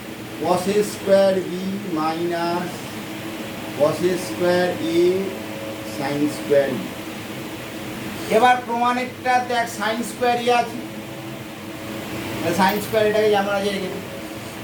cos square B minus cos square A sine square B. এবার প্রমাণেরটা দেখ, সাইন স্কোয়ার এ আছে, সাইন স্কোয়ার এটাকে যেমন আছে রেখে দিই,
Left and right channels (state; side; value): identical; both; correlation 1.00